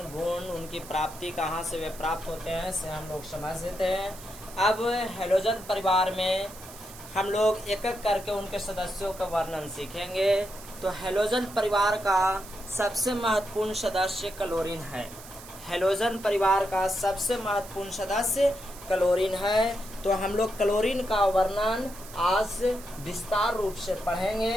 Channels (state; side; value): noise; right; hiss, 17 dB below the sound